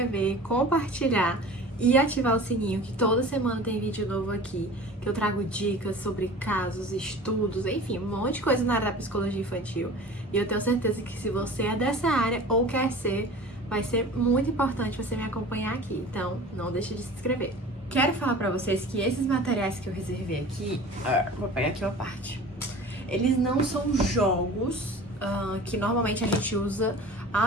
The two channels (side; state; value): both; normal; correlation 0.40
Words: compartilhar e ativar o sininho, que toda semana tem vídeo novo aqui, que eu trago dicas sobre casos, estudos, enfim, um monte de coisa na área da psicologia infantil. E eu tenho certeza que se você é dessa área ou quer ser, vai ser muito importante você me acompanhar aqui. Então, não deixe de se inscrever. Quero falar pra vocês que esses materiais que eu reservei aqui, vou pegar aqui uma parte, eles não são jogos que normalmente a gente usa